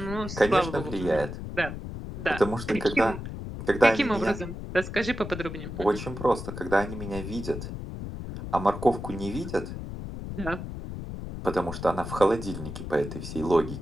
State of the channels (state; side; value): noise; left; rumble, 8 dB below the sound